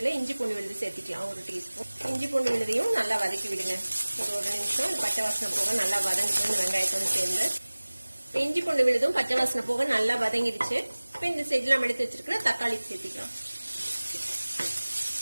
இஞ்சி பூண்டு விழுது சேர்த்திக்கலாம். 1 டீஸ்பூன் இஞ்சி பூண்டு விழுதையும் நல்லா வதக்கி விடுங்க. ஒரு நிமிஷம் பச்சை வாசனை போக நல்லா வதங்கிட்டு இந்த வெங்காயத்தோடு சேர்ந்து. இஞ்சி பூண்டு விழுதும் பச்சை வாசனை போக நல்லா வதங்கிடுச்சு. இப்ப இந்த ஸ்டேஜ்ல நம்ம எடுத்து வச்சிருக்கிற தக்காளி சேர்த்திக்கலாம்.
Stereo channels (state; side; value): inverted; both; correlation -1.00